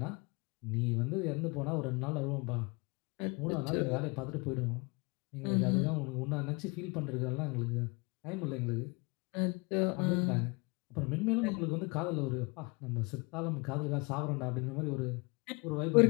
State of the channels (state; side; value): quieter; right; 29.0 dB